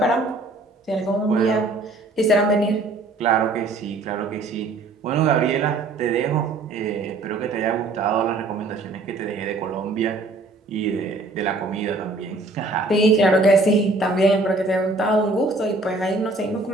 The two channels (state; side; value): quieter; left; 3.2 dB